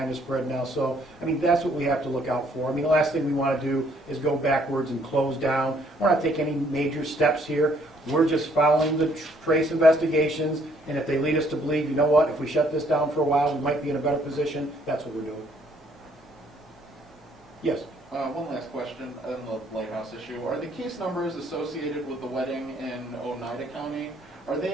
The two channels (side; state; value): both; normal; correlation 0.65